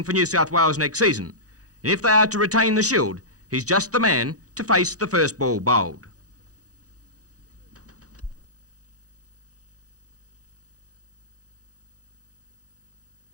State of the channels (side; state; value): left; late; 0.67 ms